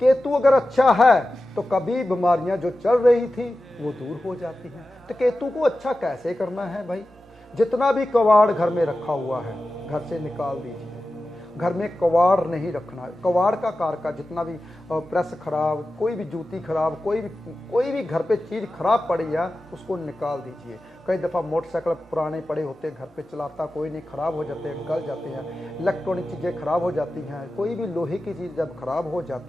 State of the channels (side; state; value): both; normal; correlation 0.93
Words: अगर अच्छा है तो कभी बीमारियां जो चल रही थी वो दूर हो जाती हैं। तो केतु को अच्छा कैसे करना है भाई, जितना भी कवाड़ घर में रखा हुआ है घर से निकाल दीजिए। घर में कवाड़ नहीं रखना है। कवाड़ का कारका जितना भी प्रेस खराब, कोई भी जूती खराब, कोई भी घर पे चीज़ खराब पड़ी है उसको निकाल दीजिए। कई दफ़ा मोटरसाइकिल पुराने पड़े होते हैं, घर पे चलाता कोई नहीं, ख़राब हो जाते हैं, गल जाते हैं, इलेक्ट्रॉनिक चीज़ें खराब हो जाती हैं, कोई भी लोहे की चीज़ जब खराब हो